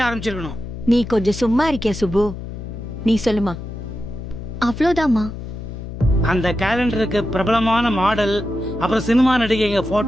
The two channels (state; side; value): noise; left; hum, 9 dB below the sound